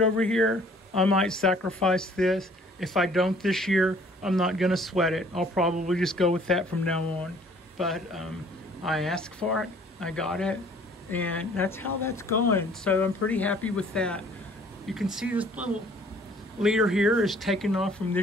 here, I might sacrifice this. If I don't this year, I'm not gonna sweat it. I'll probably just go with that from now on. But I asked for it, I got it, and that's how that's going. So I'm pretty happy with that. You can see this little leader here is taking off from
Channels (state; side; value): normal; both; correlation 0.56